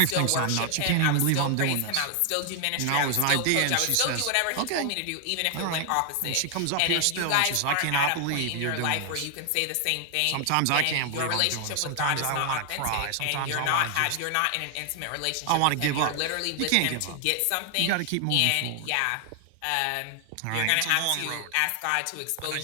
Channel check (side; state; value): both; different; correlation 0.00